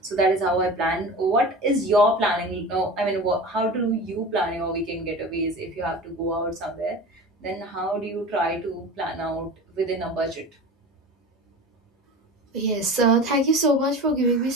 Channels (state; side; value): normal; both; correlation 0.34